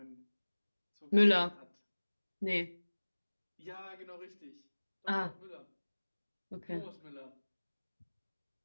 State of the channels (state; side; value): inverted; both; correlation -1.00